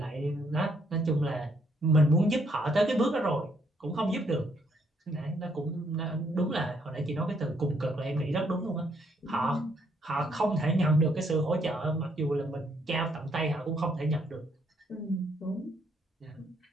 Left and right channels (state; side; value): normal; both; correlation 0.71